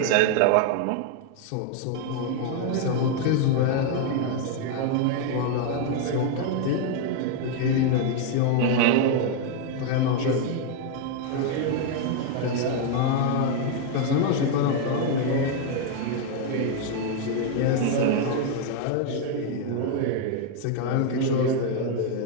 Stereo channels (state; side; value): different; both; correlation 0.01